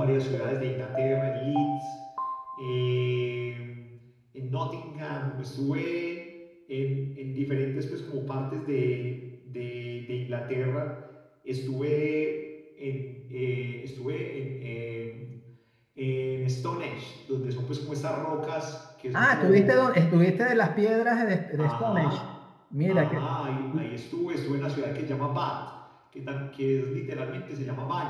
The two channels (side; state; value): both; identical; correlation 1.00